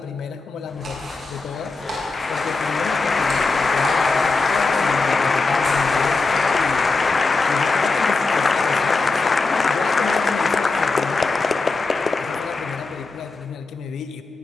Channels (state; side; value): quieter; right; 3.9 dB